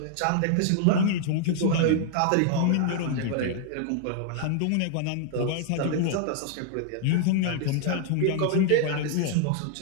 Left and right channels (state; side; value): different; both; correlation -0.01